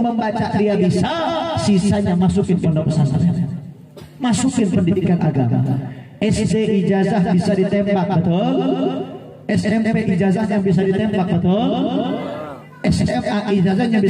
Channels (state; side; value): identical; both; correlation 1.00